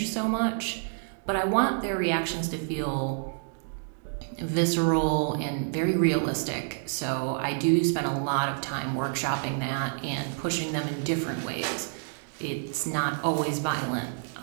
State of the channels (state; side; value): silent; left; digital silence